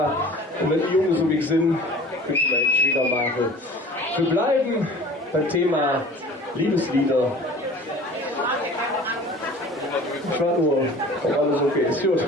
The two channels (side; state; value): both; normal; correlation 0.43